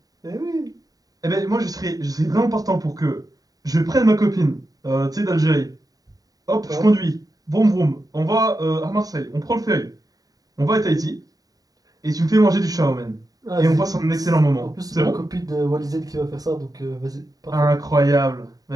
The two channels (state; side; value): late; left; 0.18 ms